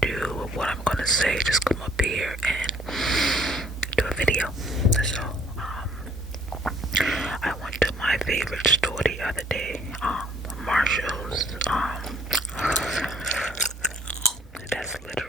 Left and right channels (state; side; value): normal; both; correlation 0.60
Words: or what I'm gonna say. Just come up here and do a video. So I went to my favorite store the other day, Marshall's. That's